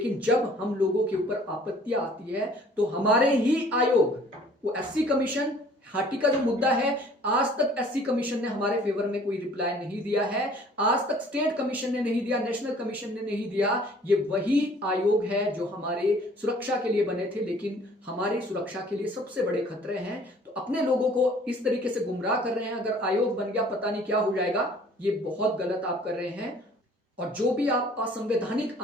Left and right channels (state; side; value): normal; both; correlation 0.54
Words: जब हम लोगों के ऊपर आपत्तियां आती है तो हमारे ही आयोग, वो एससी कमीशन हाटी का जो मुद्दा है, आज तक एससी कमीशन ने हमारे फेवर में कोई रिप्लाई नहीं दिया है, आज तक स्टेट कमीशन ने नहीं दिया, नेशनल कमीशन ने नहीं दिया। ये वही आयोग है जो हमारे सुरक्षा के लिए बने थे, लेकिन हमारी सुरक्षा के लिए सबसे बड़े खतरे हैं। तो अपने लोगों को इस तरीके से गुमराह कर रहे हैं, अगर आयोग बन गया पता नहीं क्या हो जाएगा, ये बहुत गलत आप कर रहे हैं। और जो भी आप असंवैधानिक